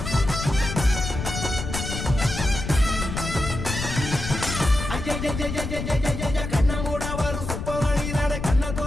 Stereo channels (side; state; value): left; noise; rumble, 5 dB below the sound